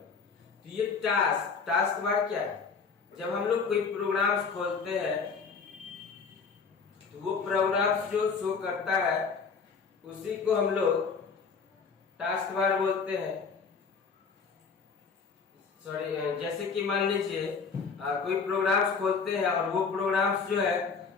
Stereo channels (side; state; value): right; quieter; 5.3 dB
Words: तो ये टास्क बार क्या है? जब हम लोग कोई प्रोग्राम्स खोलते हैं तो वो प्रोग्राम्स जो शो करता है उसी को हम लोग टास्क बार बोलते हैं। सॉरी, जैसे कि मान लीजिए कोई प्रोग्राम्स खोलते हैं और वो प्रोग्राम्स जो है